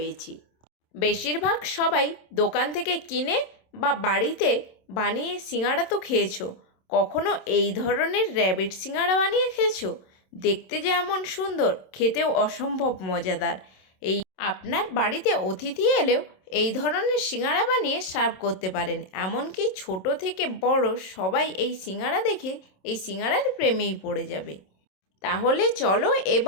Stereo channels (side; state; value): right; late; 27 ms